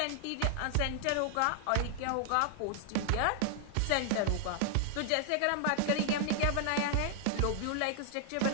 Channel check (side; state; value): both; different; correlation 0.00